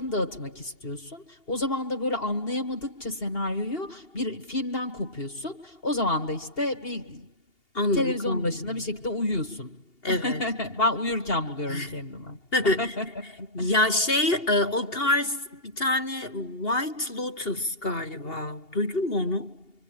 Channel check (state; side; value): late; right; 2.8 ms